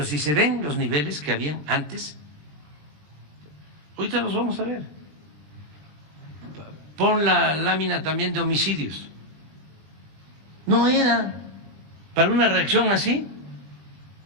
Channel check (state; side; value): late; left; 20 ms